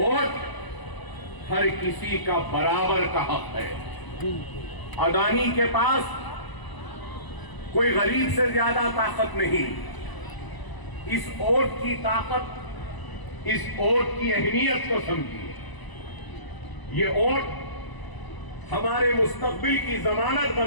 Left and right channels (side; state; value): right; late; 1.0 ms